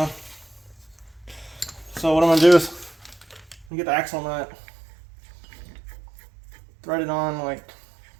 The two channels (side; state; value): left; drops out; at 3.7 s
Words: So what I'm going to do is get the axle nut, thread it on like